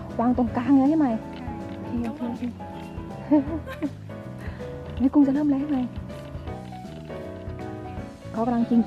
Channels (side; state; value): both; identical; correlation 1.00